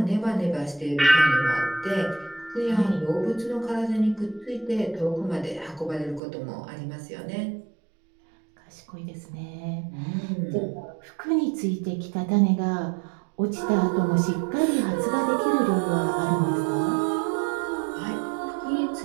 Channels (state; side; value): drops out; left; at 6.2 s